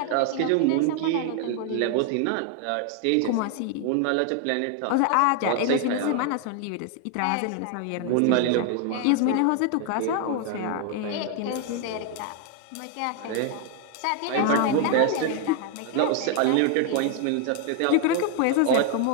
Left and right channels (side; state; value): both; different; correlation 0.00